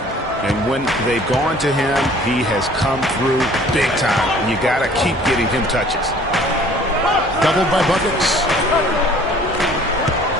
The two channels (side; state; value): both; normal; correlation 0.53